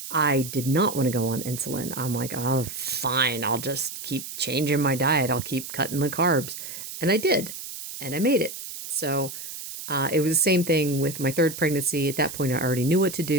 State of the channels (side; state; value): right; noise; hiss, 10 dB below the sound